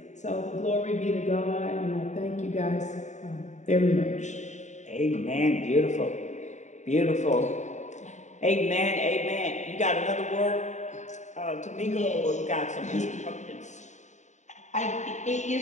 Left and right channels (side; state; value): right; late; 0.34 ms